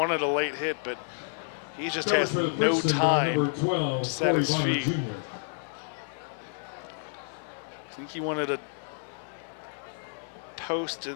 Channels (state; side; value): silent; right; digital silence